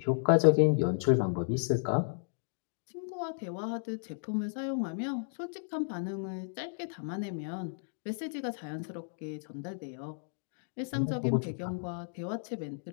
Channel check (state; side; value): silent; right; digital silence